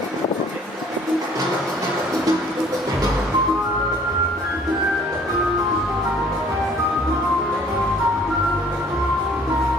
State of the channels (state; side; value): normal; both; correlation 0.56